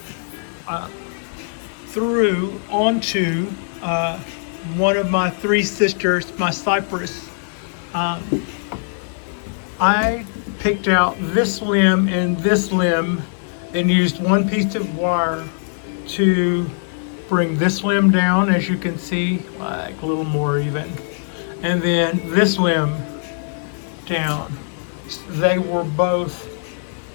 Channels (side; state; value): right; silent; 65 dB below the other